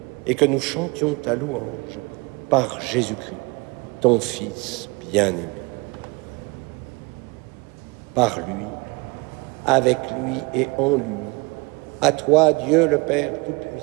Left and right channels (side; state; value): left; quieter; 26.5 dB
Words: et que nous chantions ta louange par Jésus-Christ, ton Fils bien-aimé. Par lui, avec lui et en lui, à toi, Dieu le Père